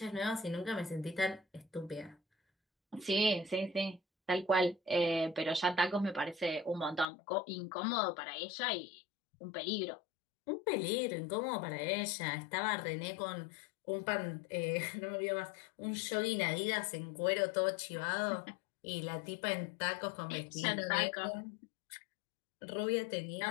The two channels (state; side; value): drops out; right; at 7.1 s